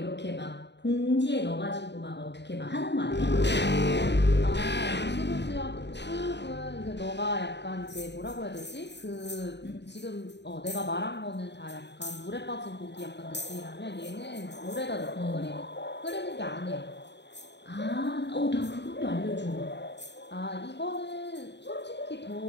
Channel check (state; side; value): late; right; 0.50 ms